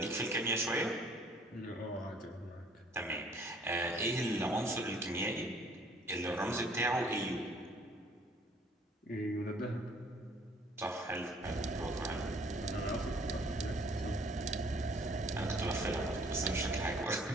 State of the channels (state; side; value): normal; both; correlation 0.58